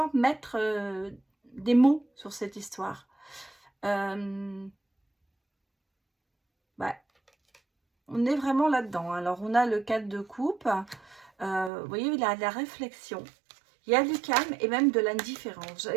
mettre des mots sur cette histoire. On est vraiment là-dedans. Alors, on a le 4 de coupe. Vous voyez, il y a de la réflexion. Il y a du calme et même de l'indifférence.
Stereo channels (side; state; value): left; drops out; at 11.7 s